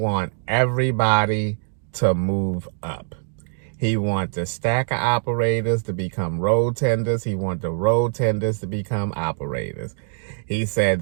everybody to move up. He wants the stacker operators to become road tenders. He wants the road tenders to become operators. He said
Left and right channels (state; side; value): silent; left; digital silence